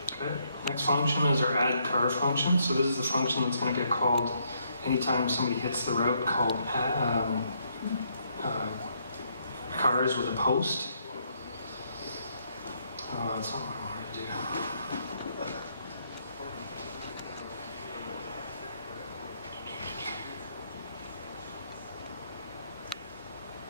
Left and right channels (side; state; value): both; inverted; correlation -0.73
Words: Okay. Next function is our addCar function. So this is the function that's going to get called anytime somebody hits the route called cars with a post. That's not what I wanted to do.